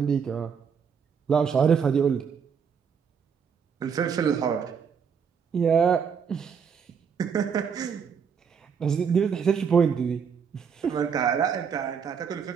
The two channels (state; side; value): quieter; left; 6.7 dB